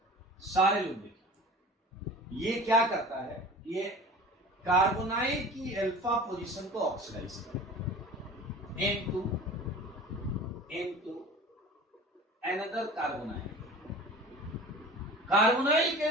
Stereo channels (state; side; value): normal; both; correlation 0.39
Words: सारे लोग देखिए, ये क्या करता है, ये कार्बोनाइल की अल्फा पोजीशन को ऑक्सीडाइज करता है इनटू अनदर कार्बोनाइल, कार्बोनाइल के